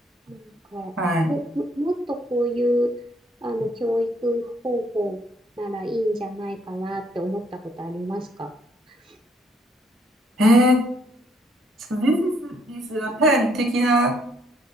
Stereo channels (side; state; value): both; normal; correlation 0.68